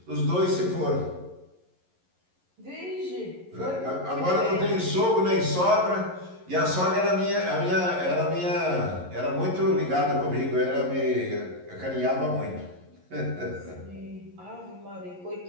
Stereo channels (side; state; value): left; late; 11 ms